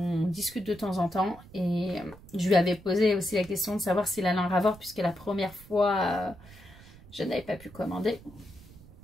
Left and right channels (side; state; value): right; noise; rumble, 21 dB below the sound